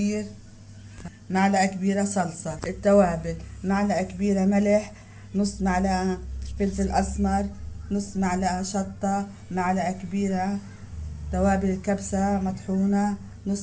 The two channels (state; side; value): identical; both; correlation 1.00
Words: معلقة كبيرة صلصة. التوابل: معلقة كبيرة ملح، نص معلقة فلفل أسمر، نص معلقة شطة، معلقة كبيرة توابل الكبسة مطحونة،